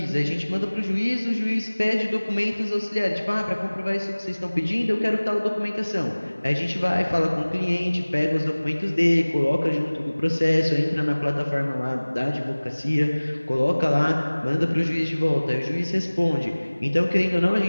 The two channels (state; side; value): inverted; both; correlation -1.00